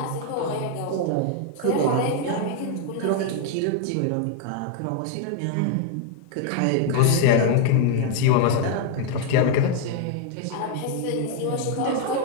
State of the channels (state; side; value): different; both; correlation 0.00